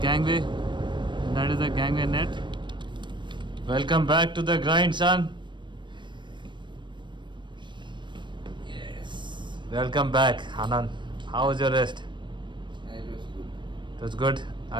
gangway. That is the gangway net. Welcome back to the grind, son. Yes. Welcome back, Anand. How was your rest? It was good. It was good.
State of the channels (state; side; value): late; left; 0.22 ms